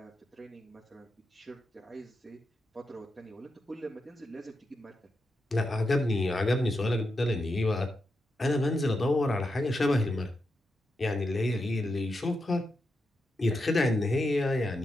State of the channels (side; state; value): both; normal; correlation 0.86